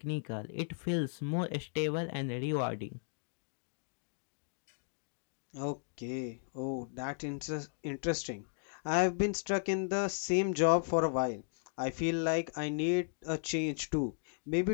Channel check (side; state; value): right; silent; digital silence